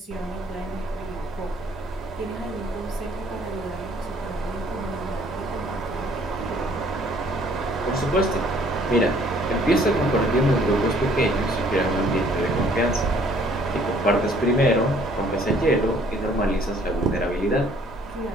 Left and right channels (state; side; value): normal; both; correlation 0.59